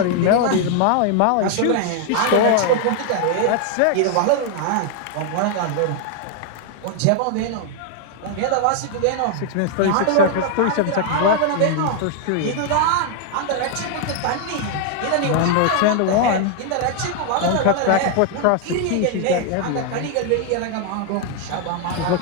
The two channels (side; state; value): both; different; correlation 0.00